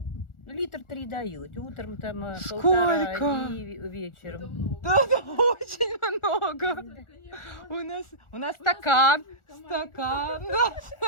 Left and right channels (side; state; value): right; late; 1.4 ms